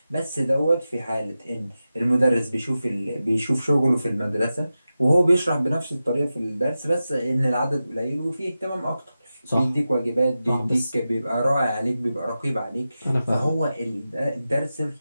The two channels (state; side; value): inverted; both; correlation -0.93